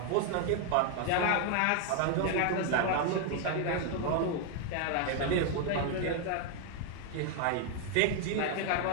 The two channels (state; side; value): different; both; correlation 0.01